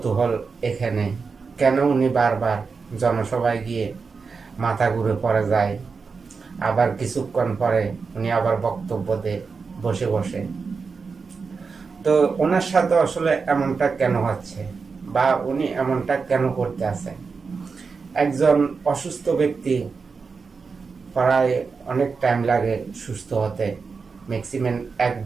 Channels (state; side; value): quieter; left; 5.0 dB